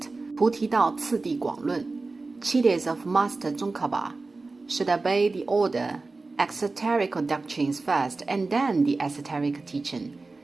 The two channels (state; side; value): quieter; left; 3.6 dB